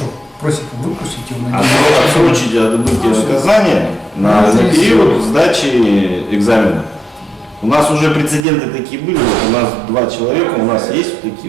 просит выпустить его на Отсрочить отбытие наказания на период сдачи экзамена. У нас уже прецеденты такие были. Вот у нас 2 человека, у нас есть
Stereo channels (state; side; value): drops out; left; at 8.4 s